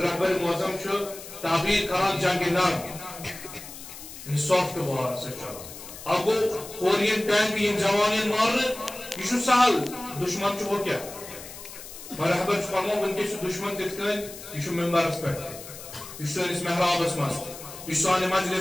معظم تعبیر کران جنگ نر سافٹ وار اب گو کورین ٹینک یم جوان مارنے یہ سہل دشمن ہو کیا رہبر فرمو ونکس دشمن تت کن یہ ممبرس پہ یہ سانس محرابس مز یہ سانہ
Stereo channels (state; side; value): noise; left; hiss, 14 dB below the sound